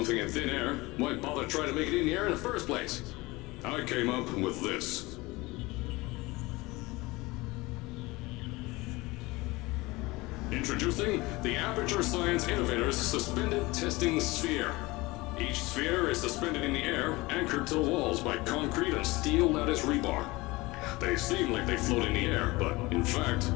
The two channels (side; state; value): right; quieter; 22.1 dB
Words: in thin air, why bother trying to make it in the air in the first place? I came up with this. Introducing the Aperture Science Innovators Suspended Testing Sphere. Each sphere is suspended in the air, anchored to the walls by concrete and steel lattice rebar. They seem like they float in the air, but in fact,